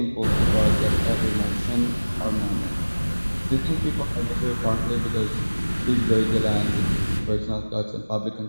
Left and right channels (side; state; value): both; inverted; correlation -1.00